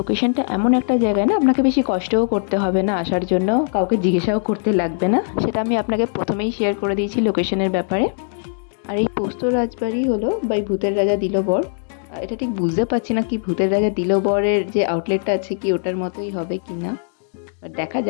এমন একটা জায়গায় না, আপনাকে বেশি কষ্টও করতে হবে না আসার জন্য, কাউকে জিজ্ঞাসাও করতে লাগবে না। সেটা আমি আপনাকে প্রথমেই শেয়ার করে দিয়েছি লোকেশনের ব্যাপারে। আর এই পোস্ত রাজবাড়ি হলো বাই ভূতের রাজা দিল বর। এটা ঠিক বুঝতে পারছি না কি ভূতের রাজা দিল বরের যে আউটলেটটা আছে কি ওটার মতোই হবে কি না, দেখা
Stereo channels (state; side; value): silent; right; digital silence